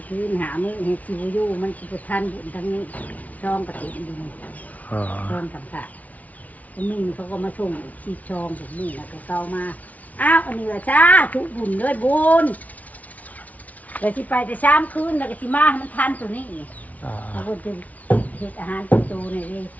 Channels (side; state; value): right; late; 0.072 ms